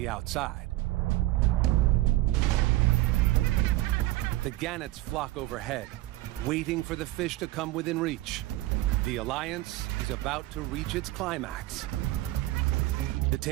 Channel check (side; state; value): left; quieter; 17.2 dB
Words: outside. The gannets flock overhead, waiting for the fish to come within reach. The alliance is about to reach its climax. The